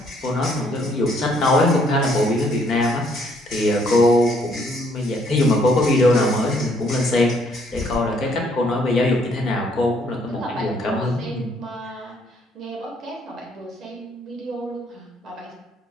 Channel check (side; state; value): both; normal; correlation 0.67